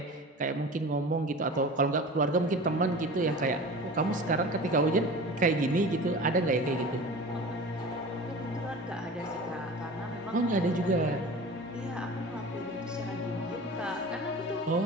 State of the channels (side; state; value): both; normal; correlation 0.37